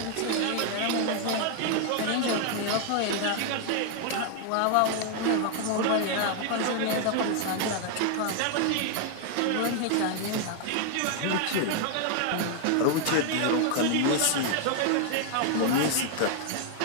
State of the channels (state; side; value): different; both; correlation 0.00